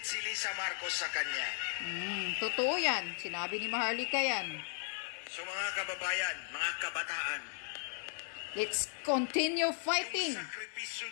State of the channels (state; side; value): silent; right; digital silence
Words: si Lisa Marcos sa kanya. Totoo yan. Sinabi ni Maharlika yan. So mga kababayan, mga kabataan, Let's continue fighting. yung sakripisyo